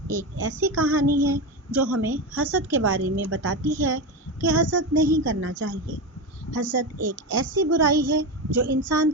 ایک ایسی کہانی ہے جو ہمیں حسد کے بارے میں بتاتی ہے کہ حسد نہیں کرنا چاہیے۔ حسد ایک ایسی برائی ہے جو انسان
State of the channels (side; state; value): both; normal; correlation 0.18